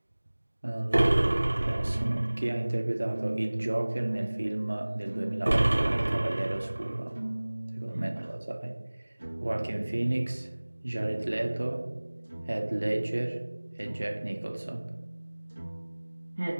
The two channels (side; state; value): both; inverted; correlation -1.00